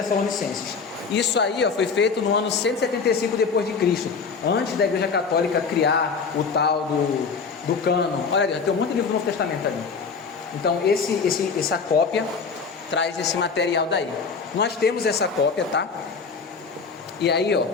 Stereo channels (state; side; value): quieter; right; 5.3 dB